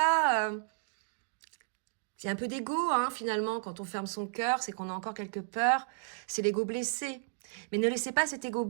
c'est un peu d'ego, hein, finalement, quand on ferme son cœur, c'est qu'on a encore quelques peurs. C'est l'ego blessé. Mais ne laissez pas cet ego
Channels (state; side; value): silent; left; digital silence